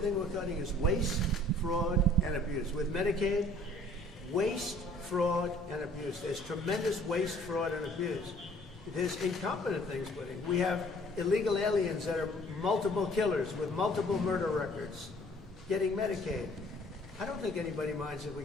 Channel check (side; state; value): both; normal; correlation 0.55